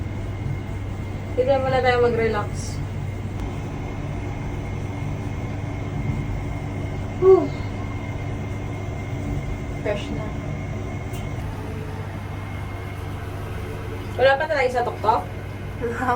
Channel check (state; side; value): identical; both; correlation 1.00